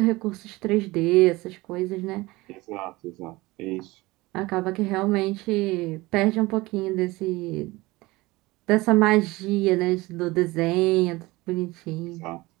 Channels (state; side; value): quieter; left; 21.0 dB